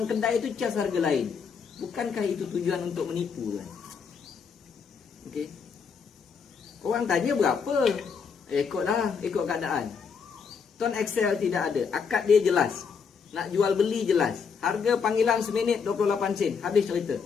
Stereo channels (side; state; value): right; quieter; 6.0 dB